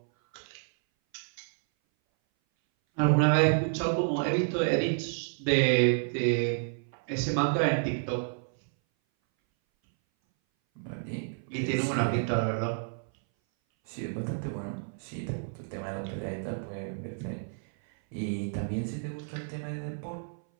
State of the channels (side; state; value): left; silent; 58 dB below the other